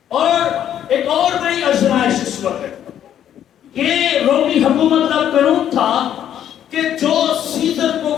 اور ایک اور بڑی آزمائش اس وقت یہ رومی حکومت کا قانون تھا کہ جو سیزر کو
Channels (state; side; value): quieter; right; 10.3 dB